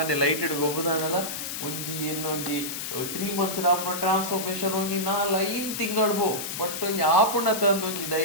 ಲೈಟೆಡ್ ಗೊಬ್ಬದಾನಲ್ಲ ಒಂಜಿ ಇನ್ನೊಂಜಿ 3 months ಆಪುನ ಟ್ರಾನ್ಸ್ಫಾರ್ಮೇಶನ್ ಒಂಜಿ 4-5 ತಿಂಗಳು ಬೋ ಬಟ್ ಒಂಜಿ ಆಪುಂಡ ತಂದು ಒಂಜಿ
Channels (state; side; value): noise; left; hiss, 5 dB below the sound